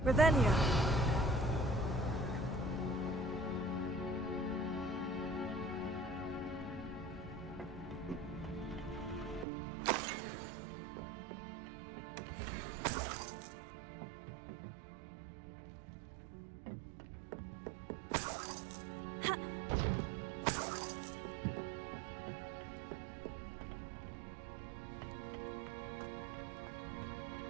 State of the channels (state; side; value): drops out; left; at 9.5 s